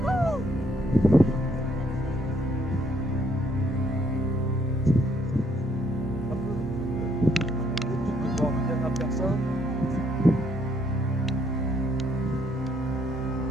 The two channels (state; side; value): normal; both; correlation 0.69